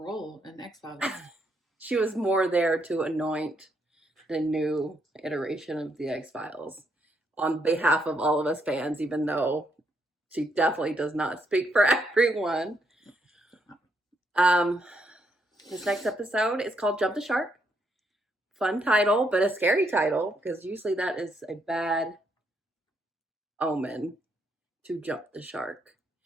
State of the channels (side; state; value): both; normal; correlation 0.76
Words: in X-Files. She was more there to anoint the new iteration of the X-Files on behalf of all of us fans, even though she definitely does not speak for everyone. This next episode is called Jump the Shark. Fun title, but a scary title, because usually that is a bad omen to jump the shark.